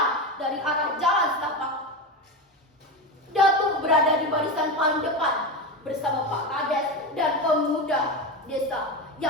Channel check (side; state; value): both; normal; correlation 0.19